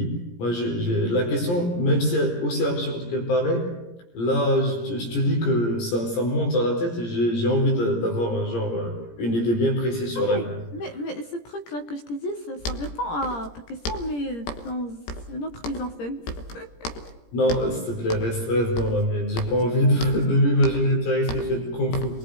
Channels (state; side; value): late; right; 17 ms